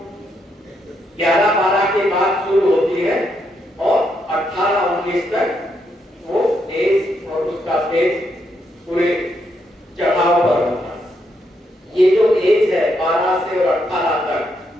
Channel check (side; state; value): both; normal; correlation 0.78